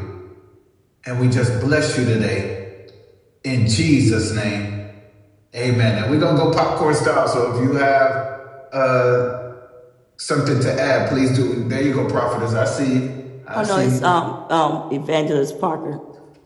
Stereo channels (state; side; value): identical; both; correlation 1.00